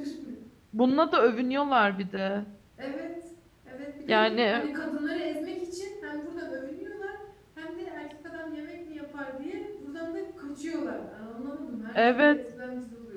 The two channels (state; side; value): identical; both; correlation 1.00